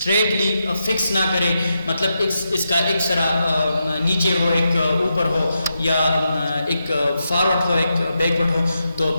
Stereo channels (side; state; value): both; inverted; correlation -0.85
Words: فکس نہ کریں, مطلب اس کا ایک سرا نیچے ہو ایک اوپر ہو یا ایک فارورڈ ہو ایک بیکورڈ ہو, تو